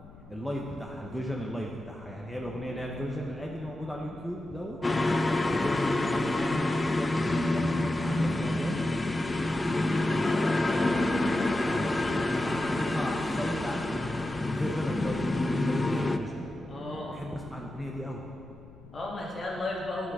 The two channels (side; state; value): left; noise; rumble, 21 dB below the sound